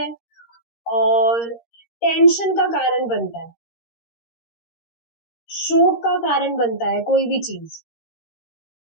और टेंशन का कारण बनता है, शोक का कारण बनता है कोई भी चीज,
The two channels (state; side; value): late; right; 13 ms